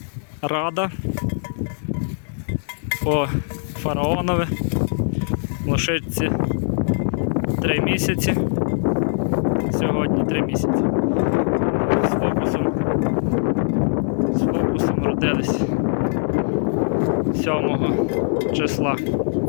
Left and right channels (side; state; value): right; silent; 59 dB below the other